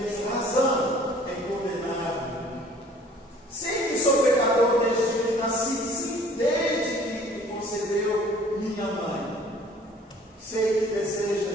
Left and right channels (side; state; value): both; normal; correlation 0.53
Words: razão em condenar-me. Sei que sou pecador desde que nasci, sim, desde que concebeu minha mãe. Sei que